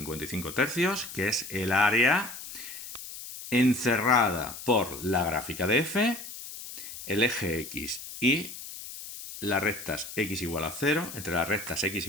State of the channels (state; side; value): noise; left; hiss, 11 dB below the sound